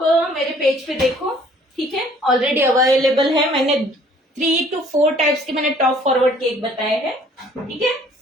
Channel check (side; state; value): both; normal; correlation 0.56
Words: मेरे पेज पे देखो, ठीक है, ऑलरेडी अवेलेबल है। मैंने 3 to 4 टाइप्स के मैंने टॉप फॉरवर्ड केक बताए हैं। ठीक है,